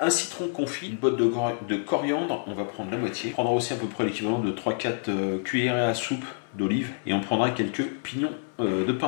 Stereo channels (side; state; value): right; silent; 60 dB below the other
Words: un citron confit, une botte de coriandre, on va prendre la moitié. On prendra aussi à peu près l'équivalent de 3-4 cuillerées à soupe d'olive et on prendra quelques pignons de